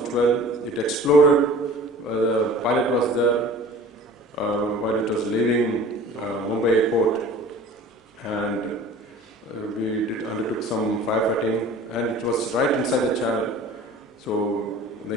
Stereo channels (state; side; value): normal; both; correlation 0.44